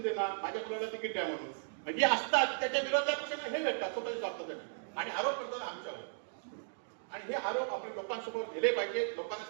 माझ्या मुलाला तिकीट द्या म्हणून, म्हणजे असतात त्याच्या विरोधात हे भेटतात स्वतःच्या स्वार्थासाठी आणि आरोप करतात आमच्यावर. आणि हे आरोप आपण लोकांसमोर गेले पाहिजे, लोकांना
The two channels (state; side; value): silent; left; digital silence